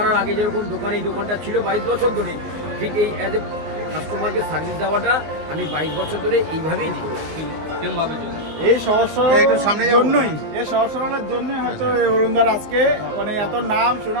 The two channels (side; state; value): left; late; 19 ms